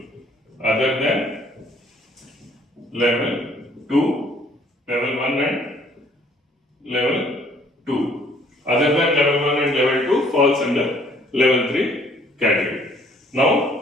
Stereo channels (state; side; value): normal; both; correlation 0.60